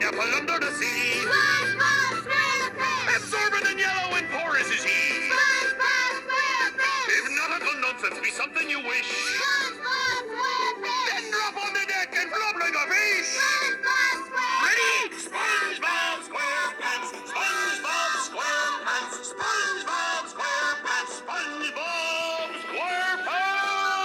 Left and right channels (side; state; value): both; identical; correlation 1.00